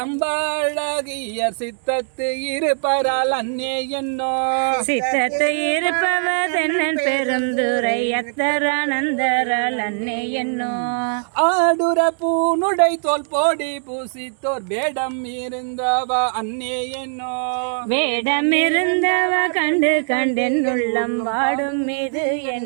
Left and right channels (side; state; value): left; silent; digital silence